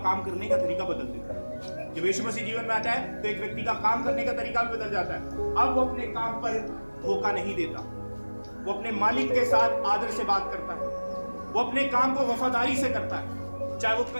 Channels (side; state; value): both; inverted; correlation -1.00